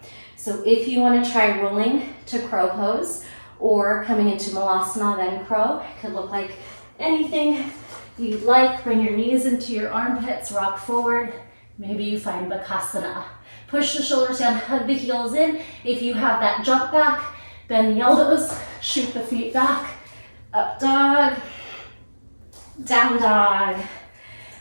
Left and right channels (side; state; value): both; inverted; correlation -1.00